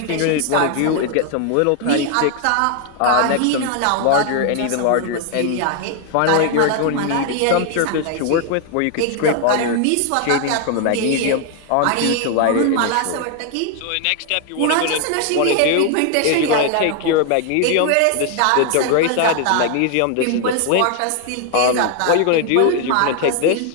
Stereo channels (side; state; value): both; different; correlation 0.00